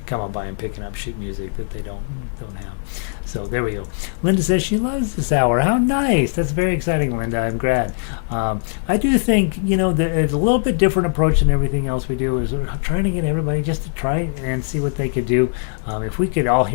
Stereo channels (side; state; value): right; silent; 56 dB below the other